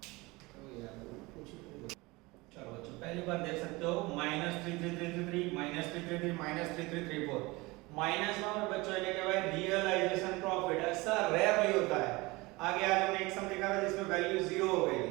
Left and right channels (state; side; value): quieter; left; 23.1 dB